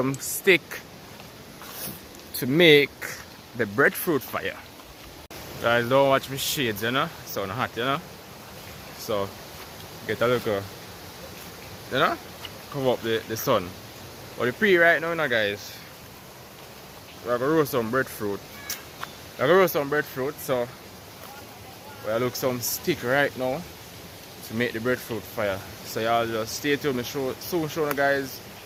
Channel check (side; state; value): both; identical; correlation 1.00